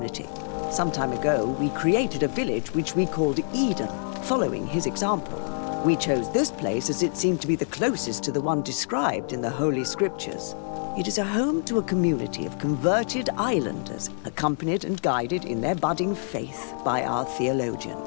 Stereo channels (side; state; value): right; silent; 61 dB below the other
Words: Some time ago, we created a village which we called Eden, following his example. We chose this place as it seemed to be the closest to the one described in the Holy Scriptures. It is a home to a community of converted islanders, accompanied and guided in their budding faith by our